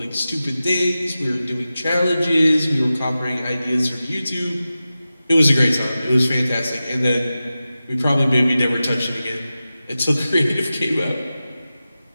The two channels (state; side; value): inverted; both; correlation -0.94